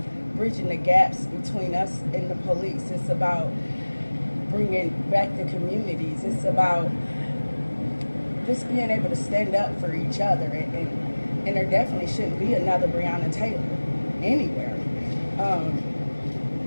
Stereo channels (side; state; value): both; inverted; correlation -1.00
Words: bridging the gaps between us and the police. It's about bringing back the communities. It's about just being able to stand up for each other. And there definitely shouldn't be another Breonna Taylor anywhere.